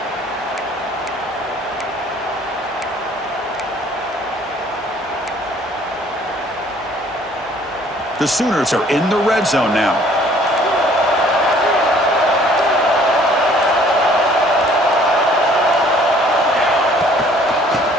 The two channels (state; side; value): normal; both; correlation 0.57